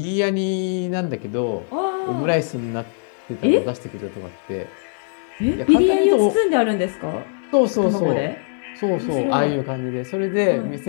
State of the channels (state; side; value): silent; right; digital silence